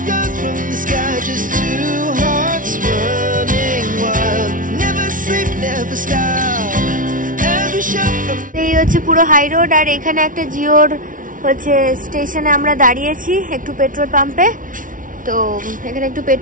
এই হচ্ছে পুরো হাই রোড, আর এখানে একটা জিওর হচ্ছে স্টেশনে আমরা দাঁড়িয়েছি একটু পেট্রোল পাম্পে। তো এখানে একটু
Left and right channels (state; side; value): late; left; 0.38 ms